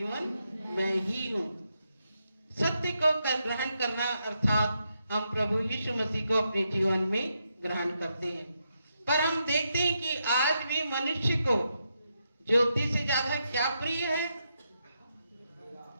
मैं ही हूँ। सत्य को ग्रहण करना अर्थात हम प्रभु यीशु मसीह को अपने जीवन में ग्रहण करते हैं। पर हम देखते हैं कि आज भी मनुष्य को ज्योति से ज्यादा क्या प्रिय है?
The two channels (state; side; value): inverted; both; correlation -0.82